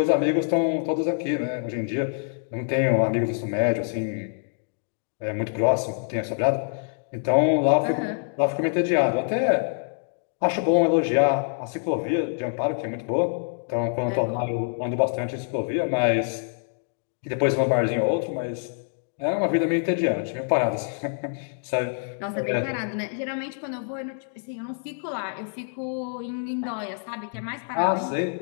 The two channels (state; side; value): silent; right; digital silence